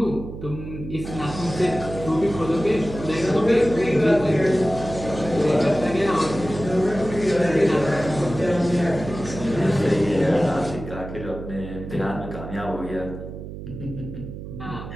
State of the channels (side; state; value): right; noise; hum, 10 dB below the sound